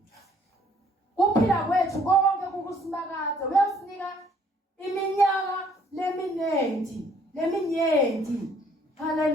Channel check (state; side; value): normal; both; correlation 0.62